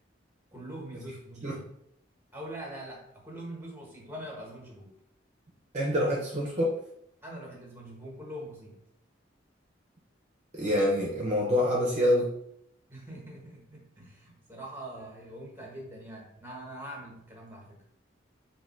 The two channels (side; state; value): both; normal; correlation 0.51